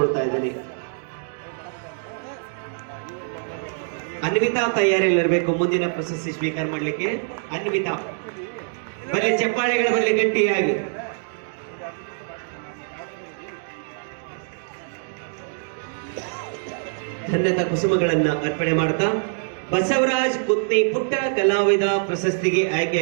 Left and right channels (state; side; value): silent; left; digital silence